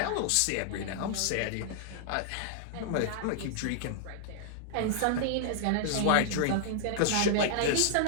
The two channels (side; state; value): both; different; correlation -0.01